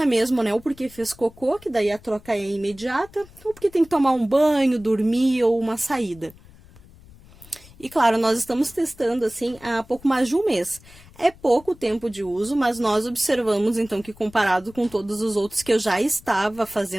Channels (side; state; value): left; noise; rumble, 23 dB below the sound